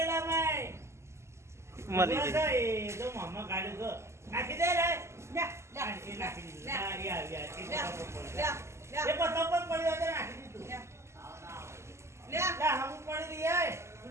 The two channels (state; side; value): late; left; 0.13 ms